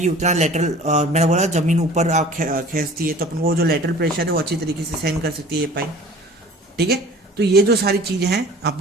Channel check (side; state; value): both; normal; correlation 0.45